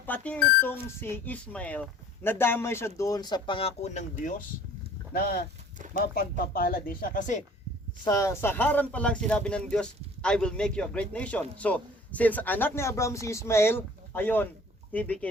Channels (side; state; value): both; normal; correlation 0.50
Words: itong si Ismael, nadamay siya doon sa pangako ng Diyos na mapagpapala din siya. Kasi sa Haran pa lang sinabi ng Diyos, I will make you a great nation. So, since anak ni Abraham si Ismael, ayon, he